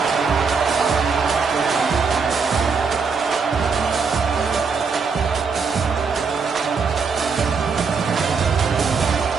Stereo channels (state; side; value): quieter; left; 5.2 dB